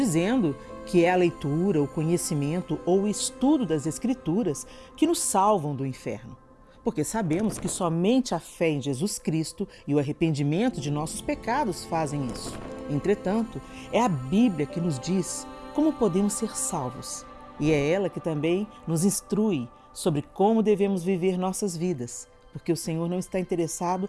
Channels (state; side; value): identical; both; correlation 1.00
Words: que é a leitura, o conhecimento ou o estudo das Escrituras que nos salvam do inferno, porque sabemos que somente a fé em Jesus Cristo e o arrependimento de nossos pecados fazem isso. Entretanto, é a Bíblia que nos diz como podemos ser salvos. E é ela que também nos instrui sobre como devemos viver nossas vidas, porque o Senhor não está interessado